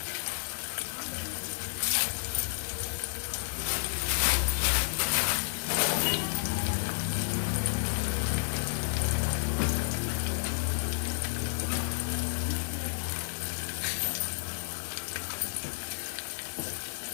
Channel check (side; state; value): right; silent; digital silence